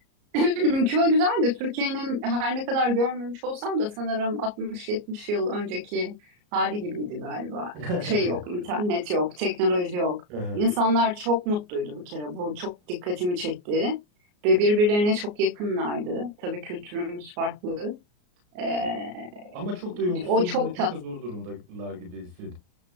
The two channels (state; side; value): late; left; 34 ms